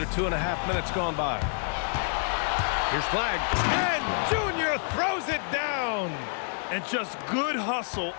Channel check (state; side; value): silent; right; 59 dB below the other